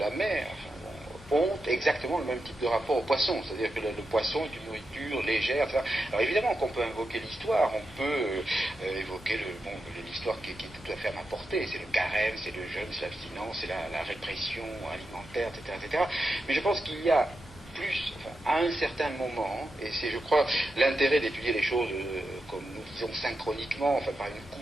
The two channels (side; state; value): both; normal; correlation 0.88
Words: mer ont exactement le même type de rapport au poisson, c'est-à-dire que le poisson est une nourriture légère, etc. Alors évidemment qu'on peut invoquer l'histoire, on peut évoquer l'histoire qui est tout à fait à ma portée, c'est le carême, c'est le jeûne, c'est l'abstinence, c'est la répression alimentaire, etc. Mais je pense qu'il y a plus, à un certain moment, et c'est, je crois, l'intérêt d'étudier les choses comme nous disons synchroniquement, par une